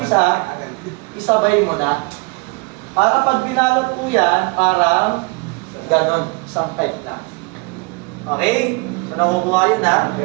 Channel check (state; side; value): quieter; left; 29.8 dB